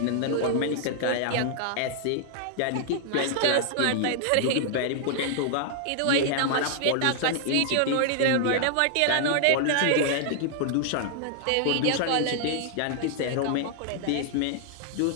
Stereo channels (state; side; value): different; both; correlation -0.01